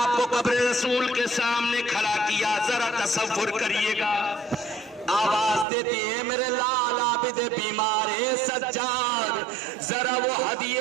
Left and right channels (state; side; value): drops out; left; at 5.7 s